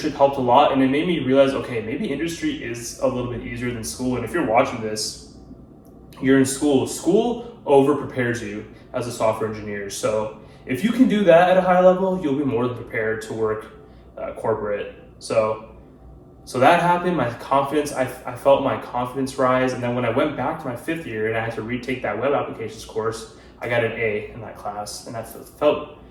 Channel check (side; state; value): both; identical; correlation 1.00